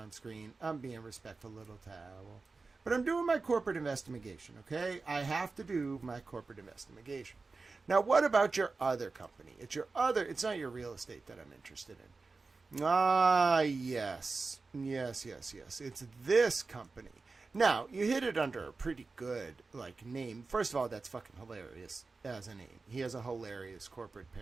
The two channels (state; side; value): quieter; left; 4.0 dB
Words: screen. I'm being respectful, little towel. But I'm doing my corporate investigation, okay? I have to do my corporate investigation. Now, what about your other company? It's not your real estate that I'm interested in. Ah, yes. Yes. It's this company. Now, you hit it under a pretty good, like, name. First of all, that's fucking hilarious as a name. He has a hilarious corporate